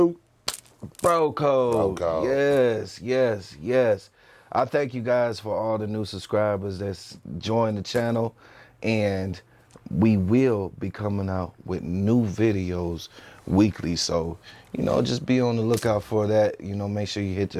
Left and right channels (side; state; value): both; identical; correlation 1.00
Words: Bro Code. Bro Code. Yes. I thank you guys for all the new subscribers that's joined the channel, and we will be coming out with new videos weekly. So, just be on the lookout for that. Make sure you hit